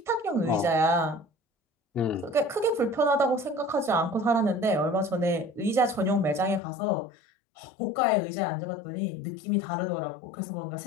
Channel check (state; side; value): drops out; right; at 6.6 s